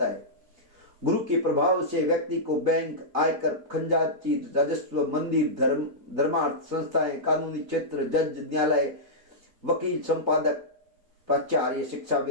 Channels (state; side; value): late; left; 4.5 ms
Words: है। गुरु के प्रभाव से व्यक्ति को बैंक, आयकर, खंजाची, राजस्व, मंदिर, धर्मार्थ संस्थाएं, कानूनी क्षेत्र, जज, न्यायालय, वकील, संपादक, प्राचार्य,